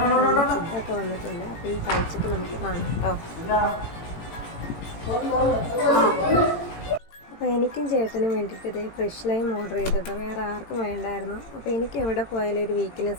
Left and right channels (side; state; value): right; late; 18 ms